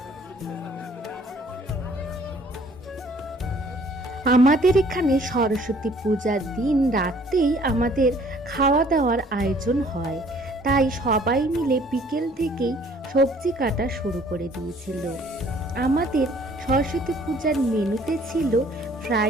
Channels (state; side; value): normal; both; correlation 0.57